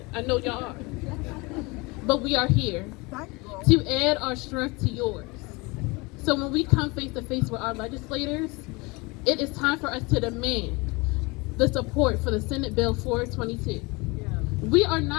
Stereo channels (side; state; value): right; quieter; 25.8 dB